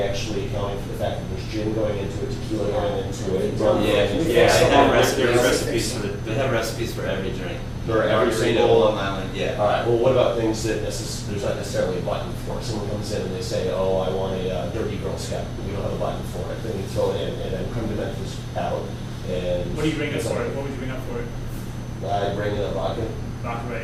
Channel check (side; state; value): both; identical; correlation 1.00